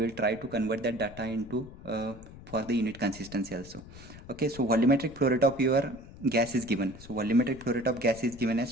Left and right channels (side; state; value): left; noise; rumble, 17 dB below the sound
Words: will try to convert that data into for the unit consistency also. Okay, so volumetric flow rate of your gas is given. So volumetric flow rate of gas is given